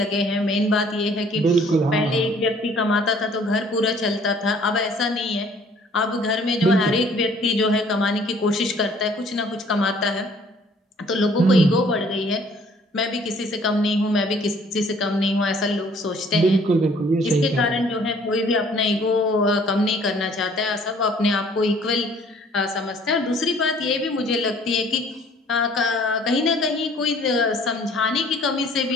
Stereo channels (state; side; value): normal; both; correlation 0.57